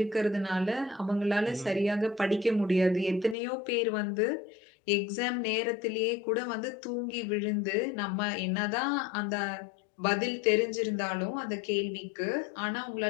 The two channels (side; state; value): right; drops out; at 3.4 s